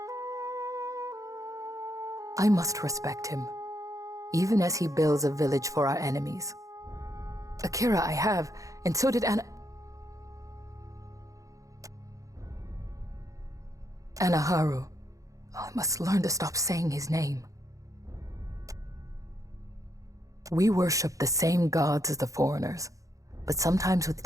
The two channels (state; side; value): late; left; 0.16 ms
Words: I must respect him, even as he builds a village for our enemies. Akira I have, and so did Anaharu. I must learn to stop saying his name. We worship the same gods as the foreigners, but sometimes with